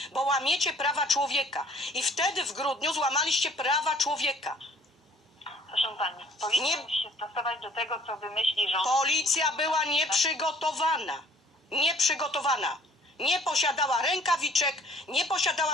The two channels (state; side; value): normal; both; correlation 0.56